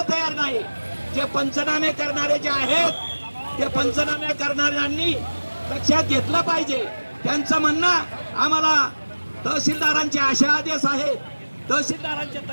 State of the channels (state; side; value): inverted; both; correlation -1.00